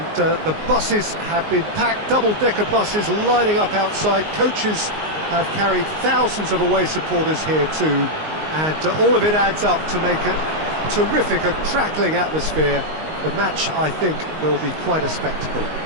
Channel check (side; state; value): left; late; 19 ms